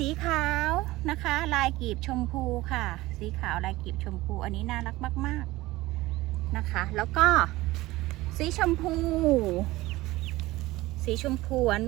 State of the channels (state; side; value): quieter; left; 18.7 dB